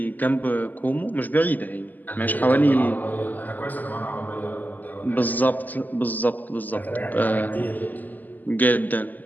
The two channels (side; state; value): right; late; 0.083 ms